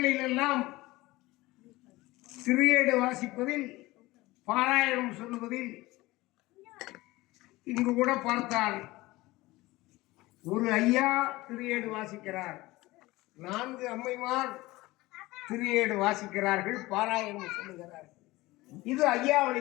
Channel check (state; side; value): quieter; right; 19.7 dB